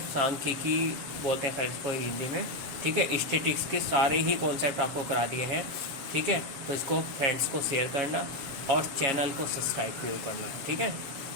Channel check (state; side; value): late; left; 7.3 ms